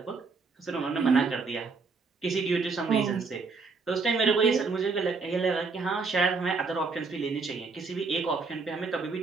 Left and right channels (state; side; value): quieter; left; 4.5 dB